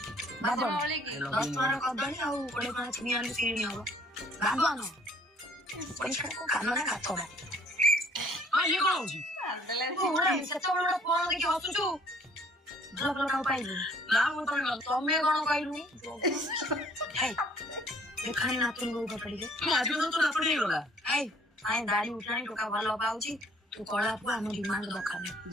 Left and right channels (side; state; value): both; normal; correlation 0.59